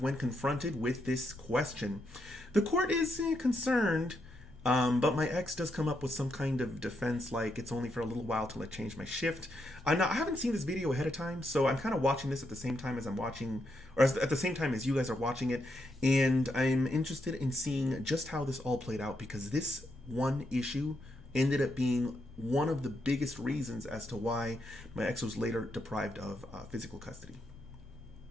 when confronted with this question, the court is concerned. But my ex does come up with some kind of defense, like it's only for a little while till I change my shift. I haven't seen this video ahead of time, so I'm kind of watching this at the same time as I'm watching, or at the same time as you guys are watching it, and I'm interested in seeing just how this all played out, because this one issue ended up being one of the biggest reasons as to why my ex was later deprived of physical custody.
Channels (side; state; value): both; normal; correlation 0.80